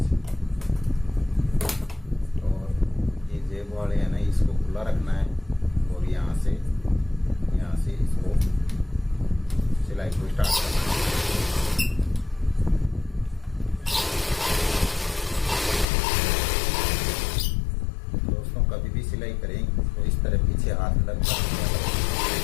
और ये जेब वाले है ना, इसको खुला रखना है और यहाँ से इसको सिलाई को स्टार्ट करना है। दोस्तों कभी भी सिलाई करें तो इस तरह पीछे हाथ लग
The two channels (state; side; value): drops out; right; at 15.9 s